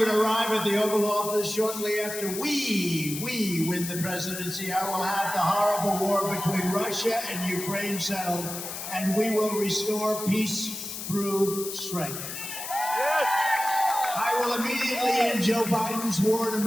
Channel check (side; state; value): left; noise; hiss, 7 dB below the sound